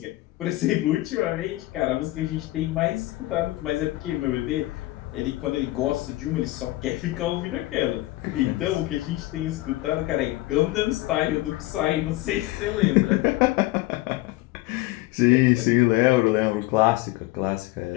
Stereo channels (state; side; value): quieter; right; 18.8 dB